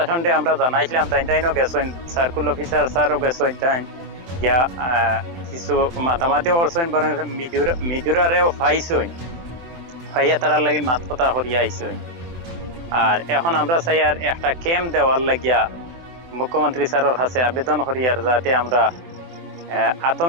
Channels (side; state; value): left; late; 24 ms